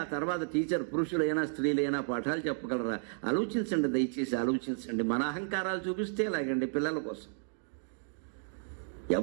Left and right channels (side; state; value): left; silent; digital silence